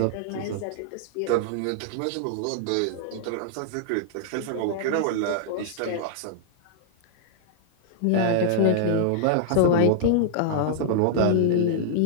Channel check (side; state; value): both; different; correlation -0.01